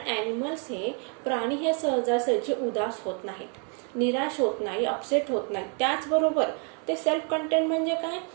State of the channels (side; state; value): left; quieter; 39.0 dB